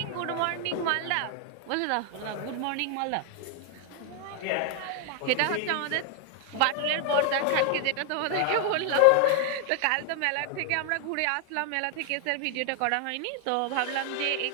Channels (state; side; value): different; both; correlation 0.00